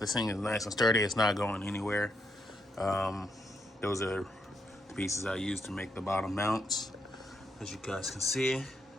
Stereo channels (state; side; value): normal; both; correlation 0.78